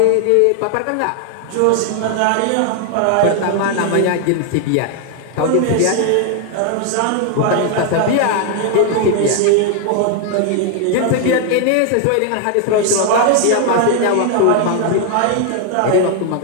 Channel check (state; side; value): different; both; correlation 0.00